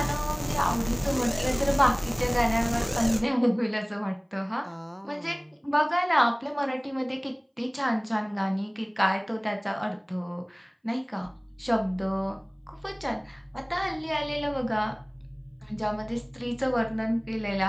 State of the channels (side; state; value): both; identical; correlation 1.00